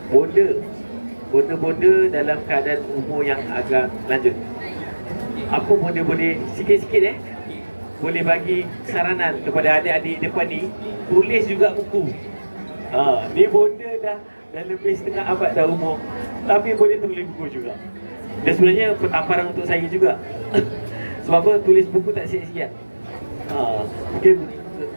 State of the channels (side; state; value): both; inverted; correlation -1.00